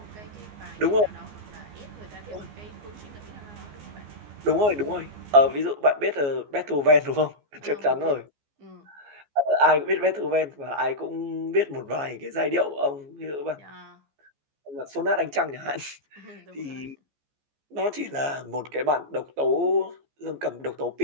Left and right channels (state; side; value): late; left; 14 ms